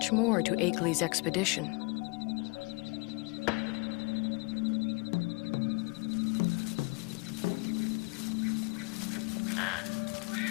more to Akeley's expedition.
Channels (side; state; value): right; quieter; 29.1 dB